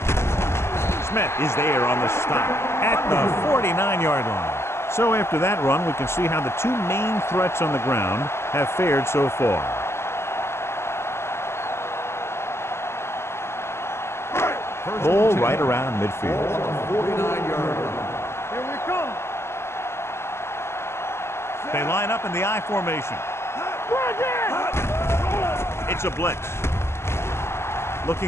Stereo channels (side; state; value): right; late; 0.12 ms